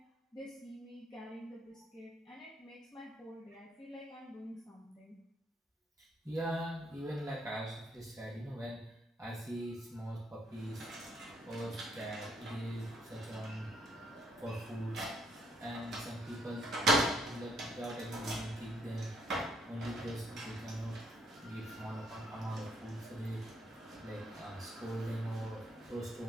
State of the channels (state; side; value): normal; both; correlation 0.71